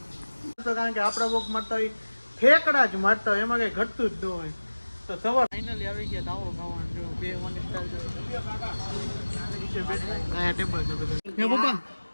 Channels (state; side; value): inverted; both; correlation -1.00